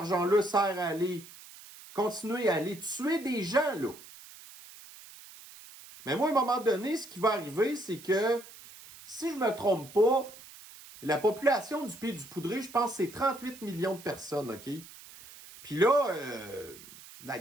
sert à aller continuer à aller tuer des gens, là. Mais moi, à un moment donné, ce qui va arriver, c'est que, si je ne me trompe pas, la population du pays du poudré, je pense, c'est 38 millions de personnes, OK? Puis là,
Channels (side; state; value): right; noise; hiss, 18 dB below the sound